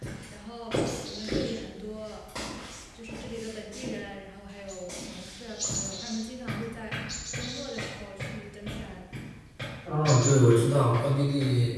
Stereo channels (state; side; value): identical; both; correlation 1.00